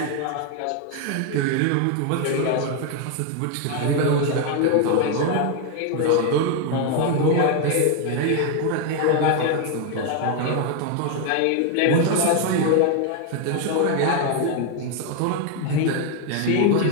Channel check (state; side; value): different; both; correlation 0.01